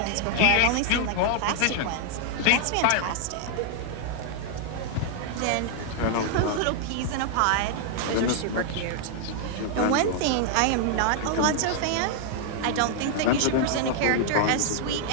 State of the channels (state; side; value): different; both; correlation 0.00